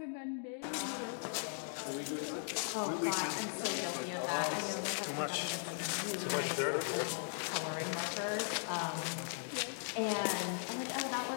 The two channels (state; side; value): silent; right; digital silence